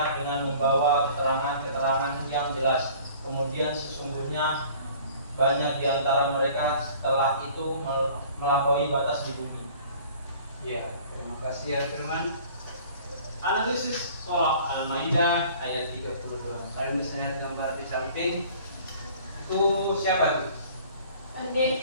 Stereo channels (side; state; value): both; inverted; correlation -0.49